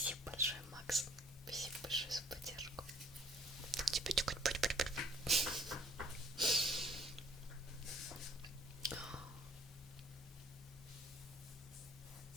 большое, Макс. Спасибо большое за поддержку. Тебе тюкать.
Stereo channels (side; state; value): both; normal; correlation 0.60